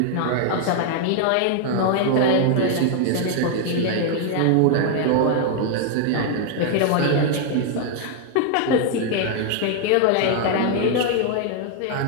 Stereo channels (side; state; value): both; different; correlation 0.00